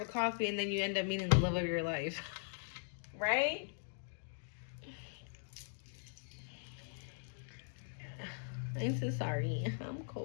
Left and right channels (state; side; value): silent; right; digital silence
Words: a coffee and then you end up meeting the love of your life. Right? I'm so sorry. I'm